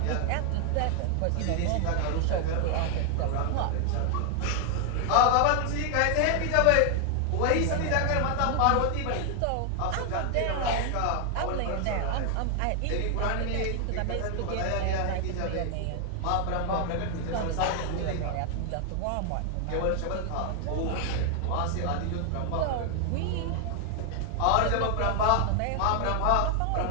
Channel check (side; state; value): both; different; correlation 0.00